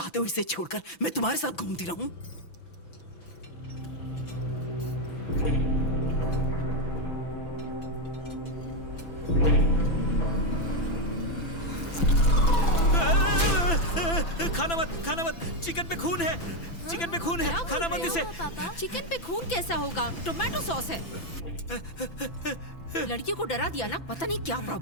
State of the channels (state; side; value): late; right; 6.0 ms